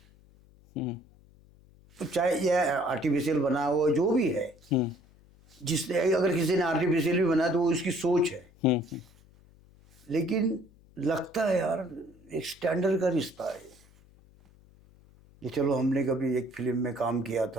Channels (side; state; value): left; noise; hum, 27 dB below the sound